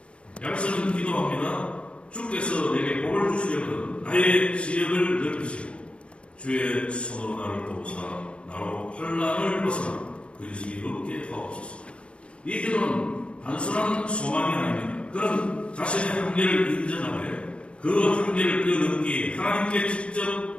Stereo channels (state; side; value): late; right; 0.059 ms